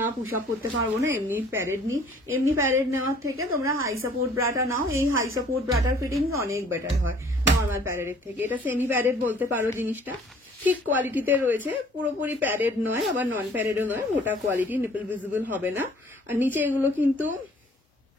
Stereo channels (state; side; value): normal; both; correlation 0.55